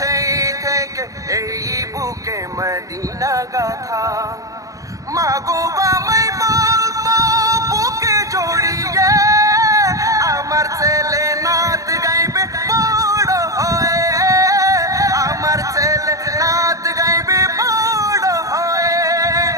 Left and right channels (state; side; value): late; left; 0.16 ms